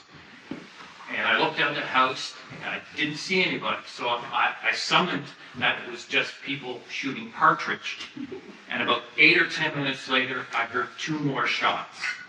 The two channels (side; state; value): both; identical; correlation 1.00